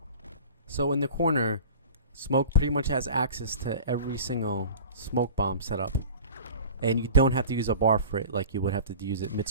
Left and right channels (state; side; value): inverted; both; correlation -0.39